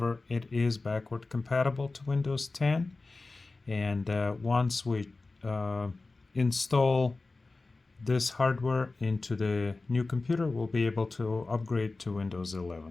it is backward compatible to Windows 10, and once we install this hardware into the new computer, we'll be able to upgrade to Windows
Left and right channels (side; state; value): right; quieter; 3.5 dB